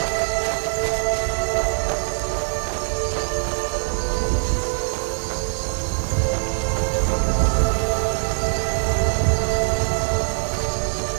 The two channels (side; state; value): left; silent; digital silence